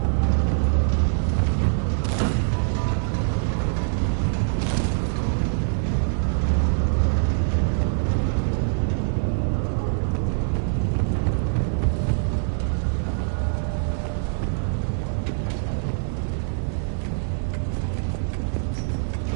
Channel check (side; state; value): left; silent; digital silence